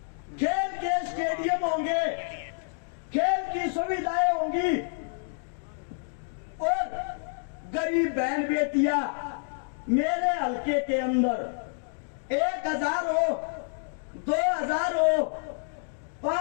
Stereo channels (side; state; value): right; silent; digital silence